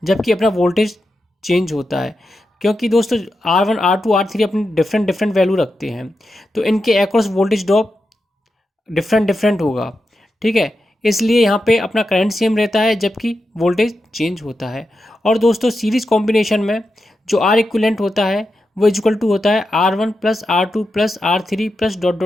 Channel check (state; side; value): normal; both; correlation 0.89